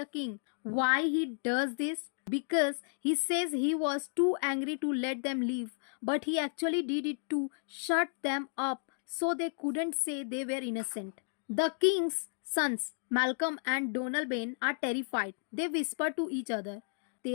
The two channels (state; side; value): silent; right; digital silence